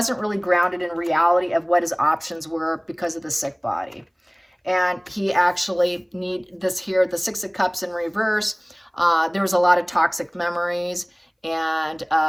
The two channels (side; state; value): both; identical; correlation 1.00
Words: really grounded in reality of what his options were because of the sick body. And he actually need this here, the Six of Cups in reverse. There was a lot of toxic memories. And